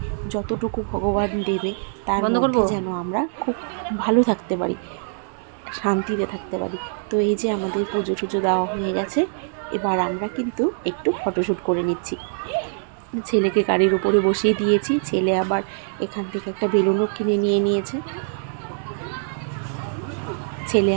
যতটুকু ভগবান দেবে তার মধ্যে যেন আমরা খুব ভালো থাকতে পারি, শান্তিতে থাকতে পারি। তো এই যে আমাদের পুজো টুজো দেওয়া হয়ে গেছে, এবার আমরা কিন্তু একটু ফটোশ্যুট করে নিচ্ছি। ছেলেকে গাড়ির উপরে বসিয়ে দিয়েছি, ছেলে আবার এখান থেকে একটা বেলুনও কিনে নিয়ে নিয়েছে। ছেলে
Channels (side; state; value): left; silent; 63 dB below the other